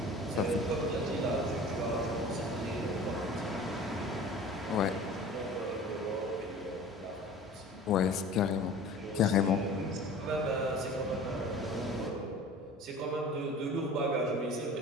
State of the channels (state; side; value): normal; both; correlation 0.42